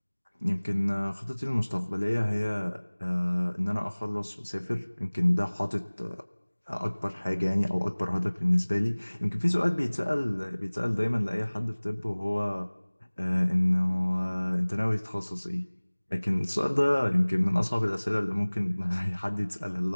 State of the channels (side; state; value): both; inverted; correlation -1.00